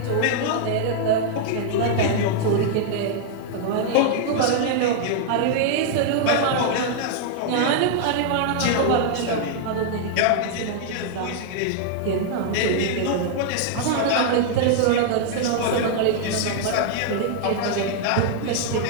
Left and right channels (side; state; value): both; different; correlation -0.01